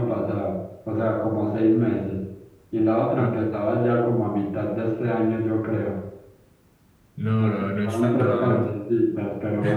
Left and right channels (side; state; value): both; identical; correlation 1.00